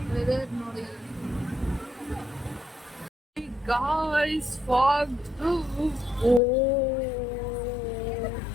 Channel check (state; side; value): drops out; right; at 6.4 s